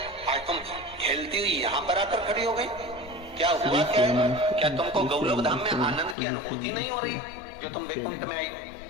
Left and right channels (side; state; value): right; drops out; at 6.2 s